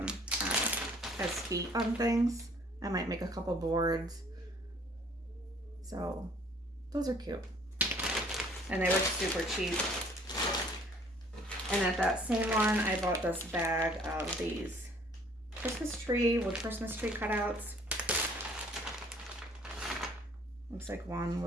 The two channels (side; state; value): both; normal; correlation 0.57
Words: as feet on things. I might make a couple boards. So those are cute. And they were super cheap. And at that same one, I bought this bag of these Christmas tree with Christmas tree cutouts. Looks like one